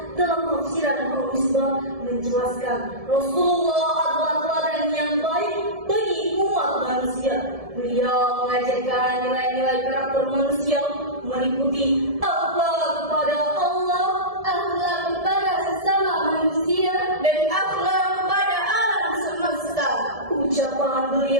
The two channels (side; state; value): left; late; 1.7 ms